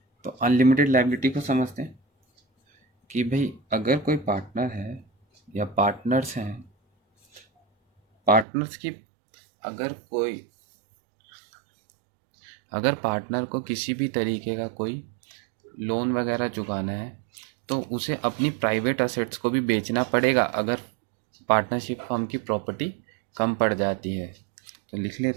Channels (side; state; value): left; drops out; at 8.5 s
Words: तो अनलिमिटेड लायबिलिटी को समझते हैं कि भाई अगर कोई पार्टनर है या पार्टनर्स हैं, पार्टनर्स की अगर कोई, अगर पार्टनर को किसी भी तरीके का कोई लोन वगैरह चुकाना है, तो उसे अपनी प्राइवेट असेट्स को भी बेचना पड़ेगा अगर पार्टनरशिप फर्म की प्रॉपर्टी कम पड़ जाती है। तो लिख